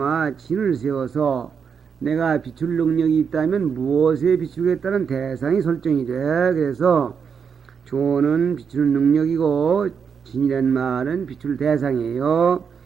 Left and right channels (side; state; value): left; quieter; 6.6 dB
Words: 진을 세워서 내가 비출 능력이 있다면 무엇에 비추겠다는 대상이 설정이 돼. 그래서 조는 비추는 능력이고 진이란 말은 비출 대상이에요.